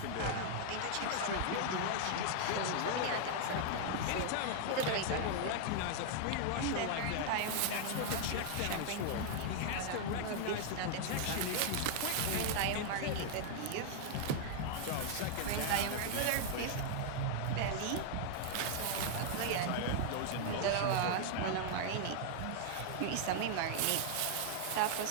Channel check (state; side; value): different; both; correlation 0.00